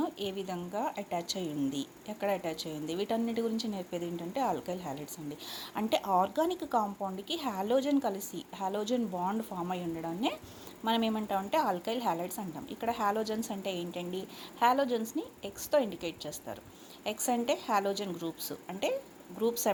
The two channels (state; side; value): identical; both; correlation 1.00